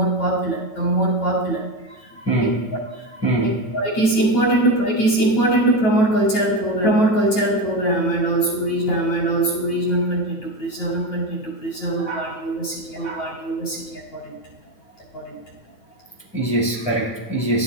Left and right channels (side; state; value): right; late; 9.1 ms